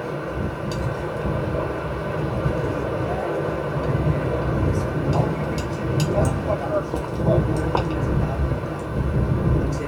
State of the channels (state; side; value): identical; both; correlation 1.00